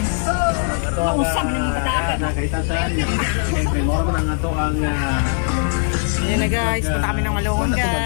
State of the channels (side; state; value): right; silent; 58 dB below the other